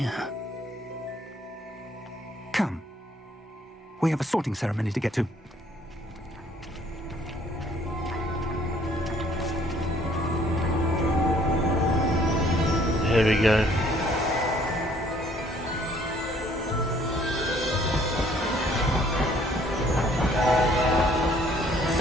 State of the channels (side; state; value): both; normal; correlation 0.61